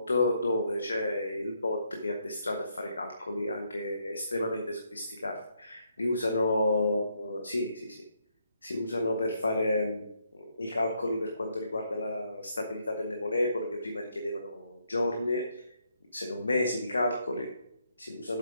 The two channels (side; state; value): both; inverted; correlation -0.75